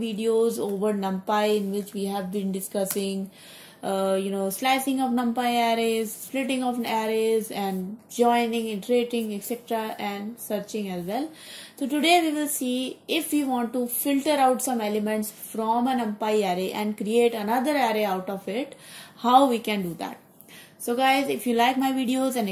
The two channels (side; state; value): both; identical; correlation 1.00